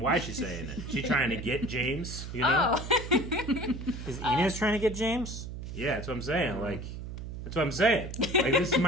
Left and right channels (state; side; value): noise; right; hum, 8 dB below the sound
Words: why is she saying it? She trying to get James, Oh. Is Inez trying to get James? Yeah, that's what I'm saying. Like, that's what I'm saying. Like, this